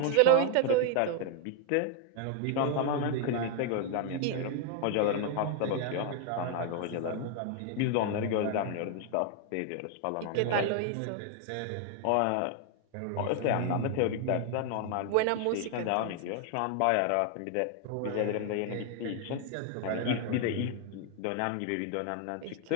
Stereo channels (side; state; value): both; different; correlation 0.00